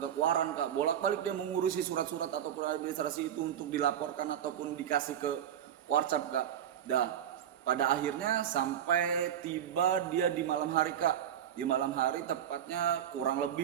ke Kuaran Kak. Bolak-balik dia mengurusi surat-surat ataupun administrasi itu untuk dilaporkan ataupun dikasih ke Warcap Kak. Pada akhirnya sampai tiba dia di malam hari Kak, di malam hari, tepatnya kurang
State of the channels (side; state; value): left; quieter; 10.1 dB